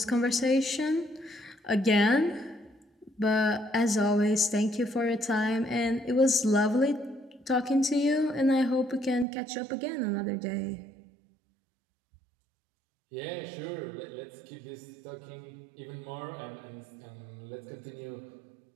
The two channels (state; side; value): drops out; left; at 9.2 s